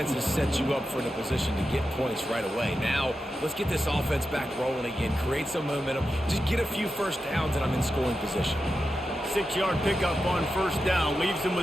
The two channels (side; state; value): both; normal; correlation 0.90